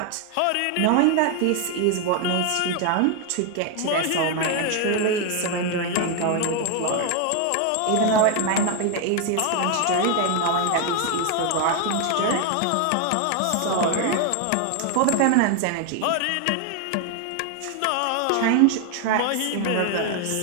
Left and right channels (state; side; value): different; both; correlation 0.01